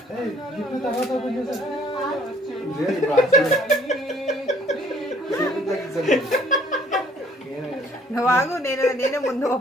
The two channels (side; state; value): both; normal; correlation 0.59